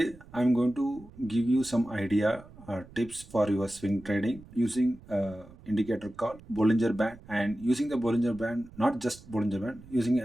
I'm going to give you some idea or tips for your swing trading using indicator called Bollinger Band, and using the Bollinger Band, not just Bollinger Band, using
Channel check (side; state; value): right; noise; rumble, 21 dB below the sound